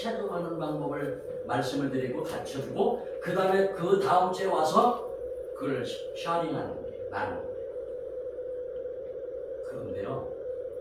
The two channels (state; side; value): identical; both; correlation 1.00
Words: 하는 방법을 말씀을 드리고 가르쳐주고 그 다음에 그 다음 주에 와서 그걸 샤링하는 거예요. 나누는 거예요. 그런데요,